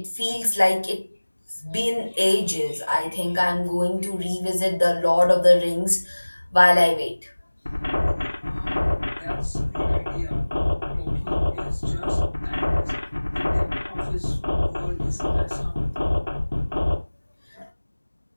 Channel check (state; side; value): inverted; both; correlation -1.00